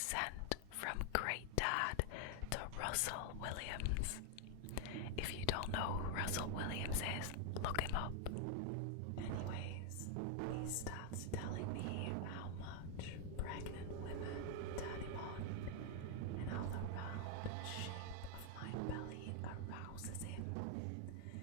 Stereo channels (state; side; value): different; both; correlation 0.00